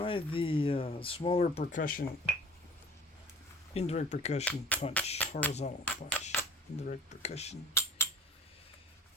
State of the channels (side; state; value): both; normal; correlation 0.49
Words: smaller percussion, indirect percussion punch, horizontal punch. Indirect percussion.